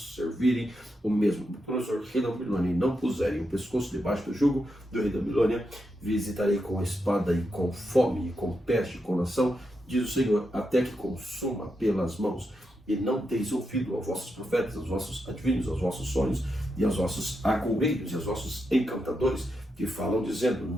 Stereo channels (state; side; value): normal; both; correlation 0.85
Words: o mesmo Nabucodonosor, rei da Babilônia, e não puserem o pescoço debaixo do jugo do rei da Babilônia, visitarei com espada e com fome, e com peste, com nação, diz o Senhor, até que consuma pelas mãos. E não deis ouvido aos vossos profetas, aos vossos adivinhos, aos vossos sonhos, e aos vossos agoureiros, e aos vossos encantadores, que falam dizendo: